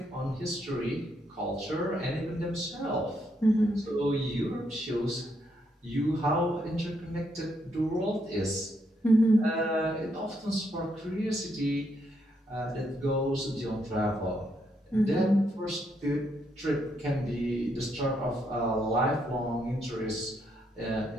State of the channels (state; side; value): normal; both; correlation 0.76